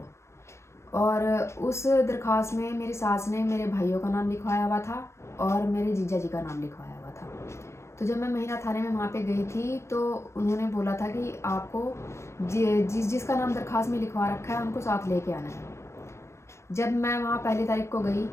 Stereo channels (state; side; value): late; right; 0.13 ms